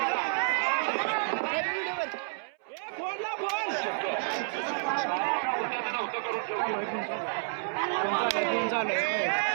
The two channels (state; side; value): silent; left; 58 dB below the other